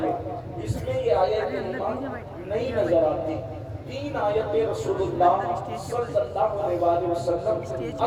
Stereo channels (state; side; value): identical; both; correlation 1.00